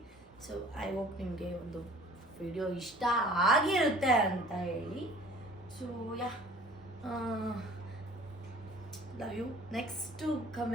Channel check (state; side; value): normal; both; correlation 0.49